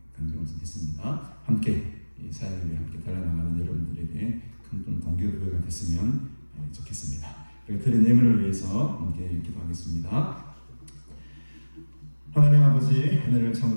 간절히 좀 했습니다. 함께 이 사역을 위해 함께 달려나가는 여러분들에게 큰 동기부여가 됐으면 좋겠습니다. 그리고 드린 예물을 위해서 함께 기도하겠습니다. 하나님 아버지, 은혜를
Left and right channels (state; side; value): inverted; both; correlation -1.00